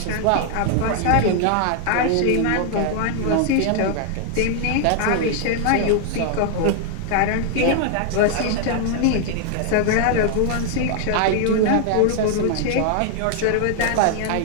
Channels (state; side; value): different; both; correlation 0.00